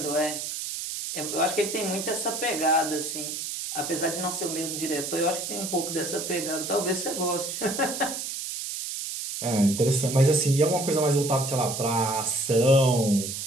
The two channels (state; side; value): noise; right; hiss, 5 dB below the sound